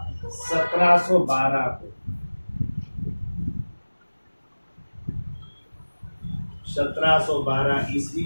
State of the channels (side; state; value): both; inverted; correlation -1.00